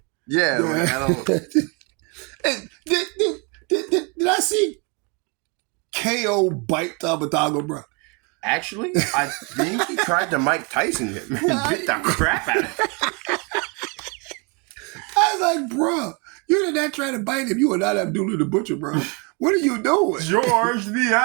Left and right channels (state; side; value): quieter; left; 32.6 dB